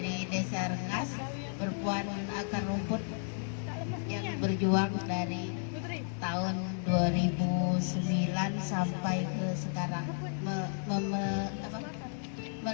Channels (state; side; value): silent; right; 56 dB below the other